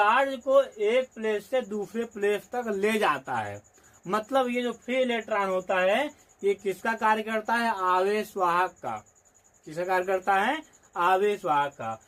को एक प्लेस से दूसरे प्लेस तक ले जाता है। मतलब ये जो फ्री इलेक्ट्रॉन होता है ये किसका कार्य करता है? आवेश वाहक का। किसका कार्य करता है? आवेश वाहक का।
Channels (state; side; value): identical; both; correlation 1.00